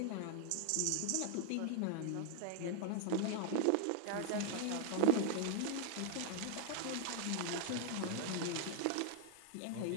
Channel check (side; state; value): both; different; correlation 0.00